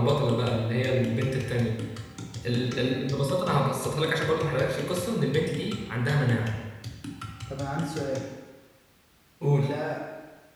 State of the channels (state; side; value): identical; both; correlation 1.00